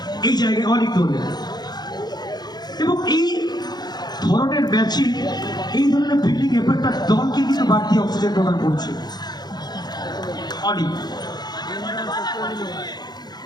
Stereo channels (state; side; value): late; right; 0.20 ms